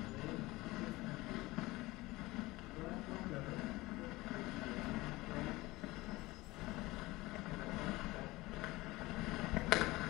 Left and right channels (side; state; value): right; quieter; 20.3 dB